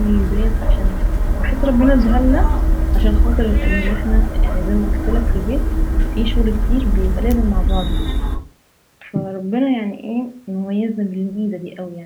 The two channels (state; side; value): identical; both; correlation 1.00